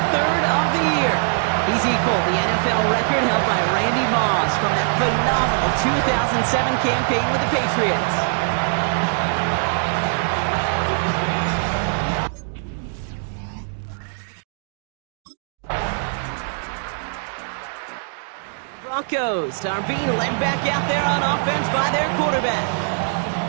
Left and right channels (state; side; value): silent; left; digital silence